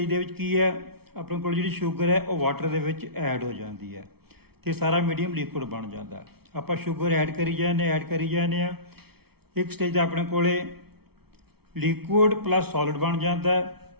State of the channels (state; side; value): late; left; 0.96 ms